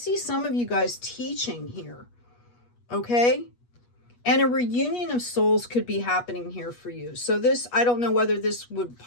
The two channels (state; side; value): late; right; 8.3 ms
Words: some of you guys teaching here. Okay? And a reunion of souls could be happening here for you. So this, I don't know whether this would